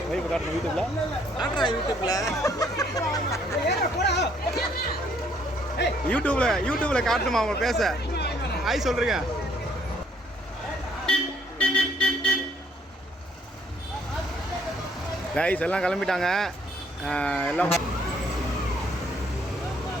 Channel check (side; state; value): both; normal; correlation 0.65